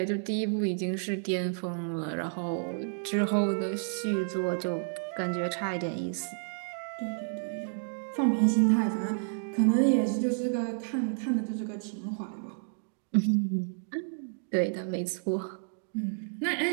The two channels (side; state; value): left; silent; digital silence